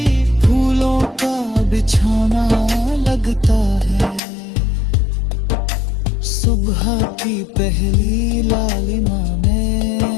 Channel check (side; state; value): right; drops out; at 4.2 s